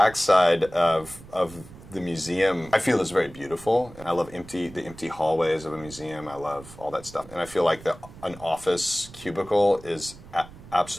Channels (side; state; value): right; noise; rumble, 18 dB below the sound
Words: of the museum, I feel, is very beautiful. I love the empty hallways of a museum. I love all that stuff, and I feel like an office cubicle is